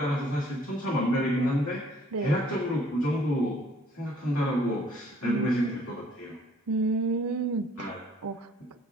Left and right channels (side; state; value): both; normal; correlation 0.59